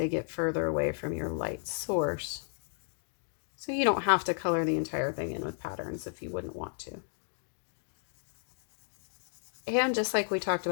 get further away from your light source. So you don't have to color the entire thing in with patterns if you wouldn't want to. And just like we talked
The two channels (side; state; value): right; silent; digital silence